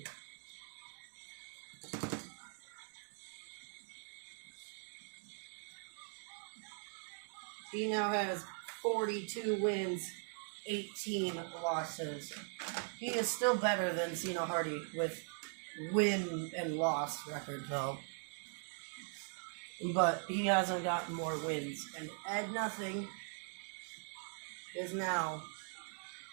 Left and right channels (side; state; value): left; silent; 50 dB below the other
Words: He now has 42 wins, 18 losses. He is still better than Cena Hardy with win and loss record though. But he hasn't gotten more wins. And Ed Nothing is now